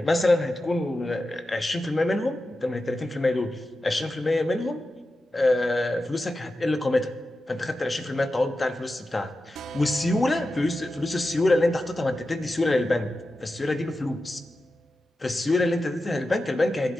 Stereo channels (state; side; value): normal; both; correlation 0.92